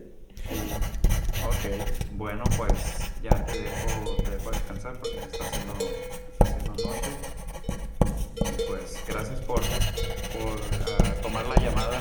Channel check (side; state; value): both; identical; correlation 1.00